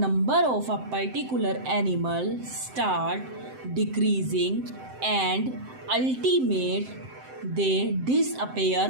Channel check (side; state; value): left; late; 7.7 ms